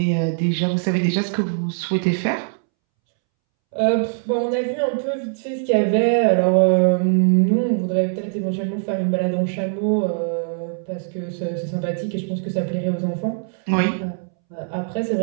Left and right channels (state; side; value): silent; left; 65 dB below the other